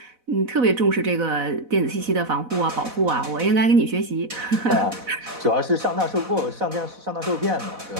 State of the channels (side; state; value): left; late; 4.0 ms